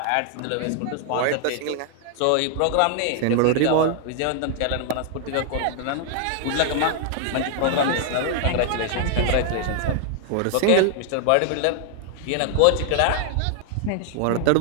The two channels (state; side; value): different; both; correlation 0.00